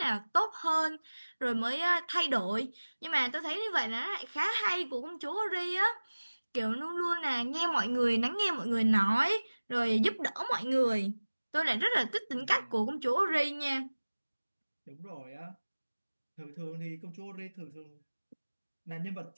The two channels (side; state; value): both; inverted; correlation -1.00